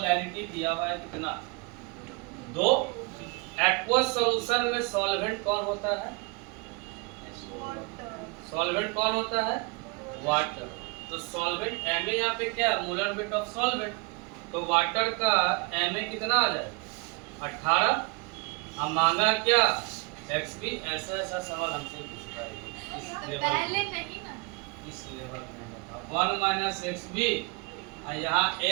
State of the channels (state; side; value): quieter; left; 29.5 dB